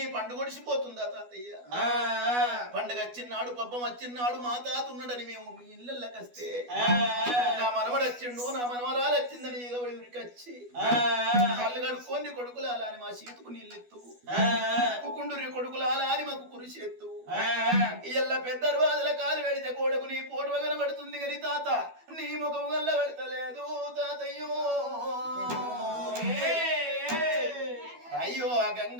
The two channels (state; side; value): late; left; 12 ms